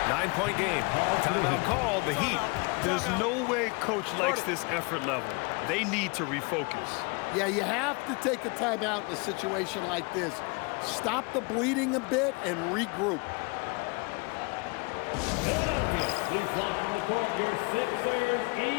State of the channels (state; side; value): quieter; right; 30.7 dB